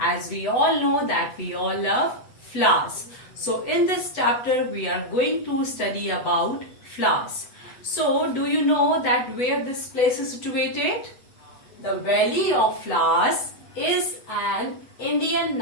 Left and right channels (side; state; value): right; late; 8.1 ms